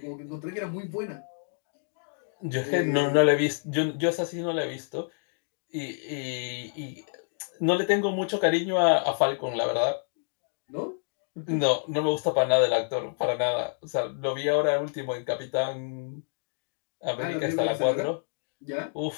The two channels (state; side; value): silent; right; digital silence